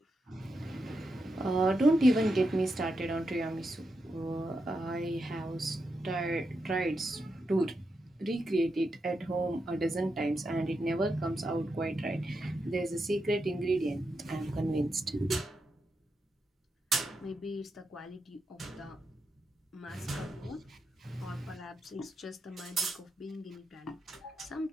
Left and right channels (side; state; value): both; normal; correlation 0.86